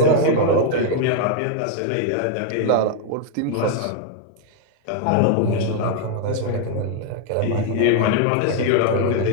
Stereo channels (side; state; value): both; different; correlation 0.00